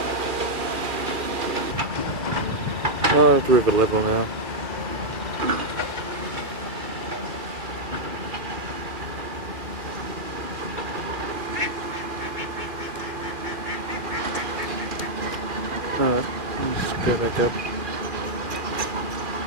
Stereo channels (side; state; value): left; late; 2.4 ms